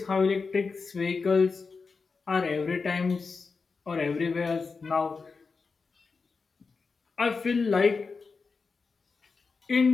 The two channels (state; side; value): quieter; right; 4.7 dB